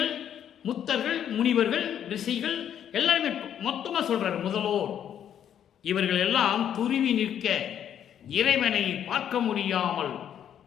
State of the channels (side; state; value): right; quieter; 9.6 dB